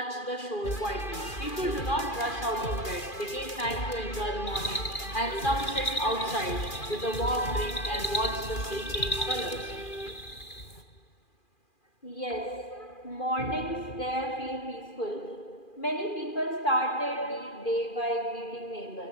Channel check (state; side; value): late; right; 2.4 ms